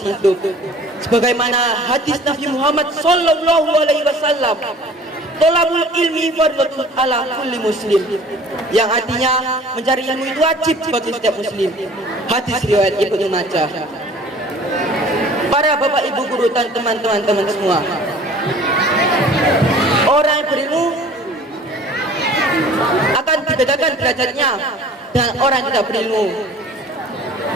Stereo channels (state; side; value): normal; both; correlation 0.48